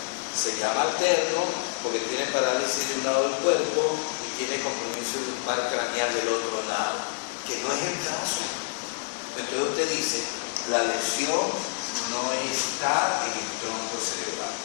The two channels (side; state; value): right; silent; digital silence